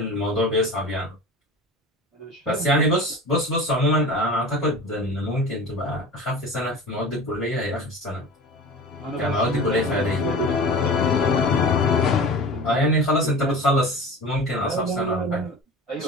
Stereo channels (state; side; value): normal; both; correlation 0.35